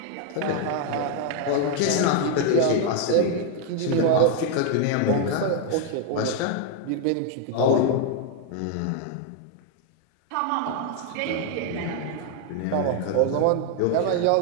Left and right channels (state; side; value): different; both; correlation 0.00